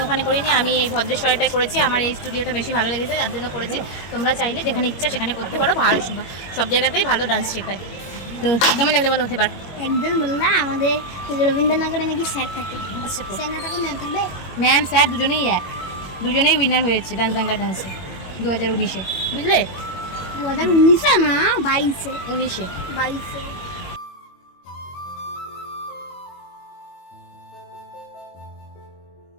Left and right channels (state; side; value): late; right; 21 ms